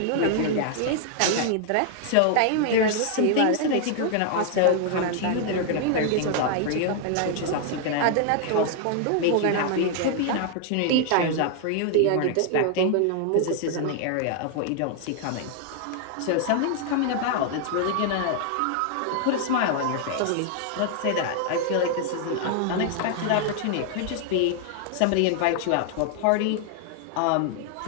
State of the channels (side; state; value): both; different; correlation 0.00